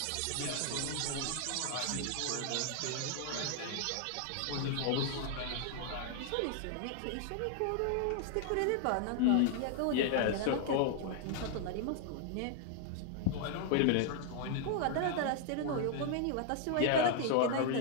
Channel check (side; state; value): both; different; correlation 0.00